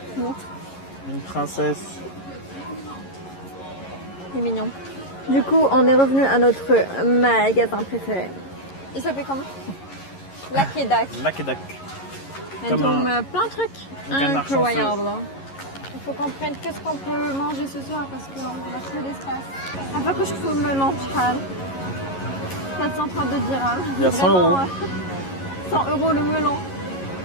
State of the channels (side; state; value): right; late; 11 ms